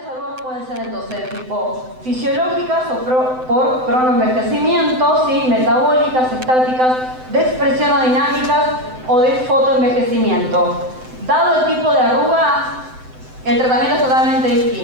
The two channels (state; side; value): late; left; 7.8 ms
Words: arrugas pueden ser entonces de tipo fisiológicas o por cronoenvejecimiento, ¿sí? Metabólicas, estáticas, de expresión o dinámicas o de fotoenvejecimiento. Dado el tipo de arrugas, el tratamiento es totalmente